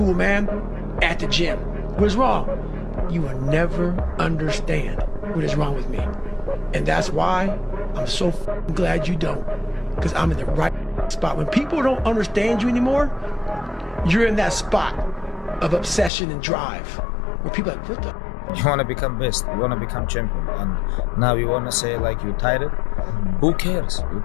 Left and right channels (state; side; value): drops out; right; at 16.1 s